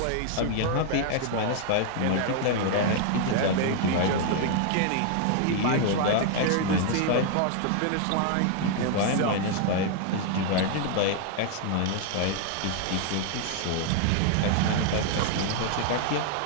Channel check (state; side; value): different; both; correlation 0.00